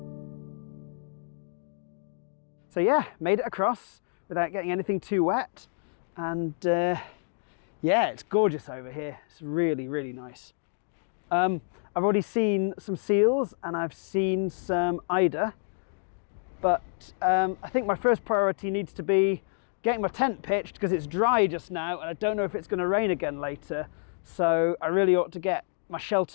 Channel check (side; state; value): right; silent; digital silence